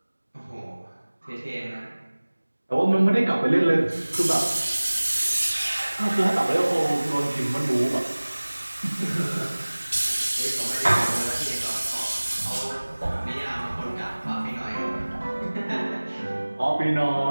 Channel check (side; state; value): both; inverted; correlation -1.00